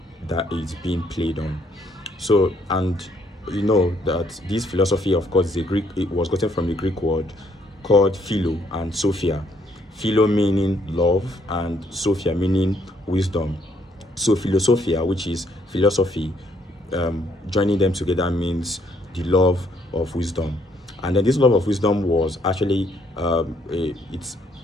that is being played on. So, and you know that this philosophy, of course, is a Greek. It was gotten from a Greek word called philo and sophia. Philo meaning love, and sophia meaning wisdom. So philosophia, which is philosophy, joining them together means the love of wisdom. And then this love of wisdom was actually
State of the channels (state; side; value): normal; both; correlation 0.69